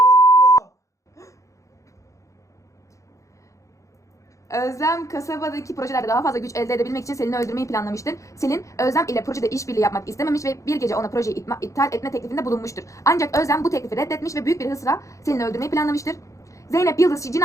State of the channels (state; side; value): late; right; 0.15 ms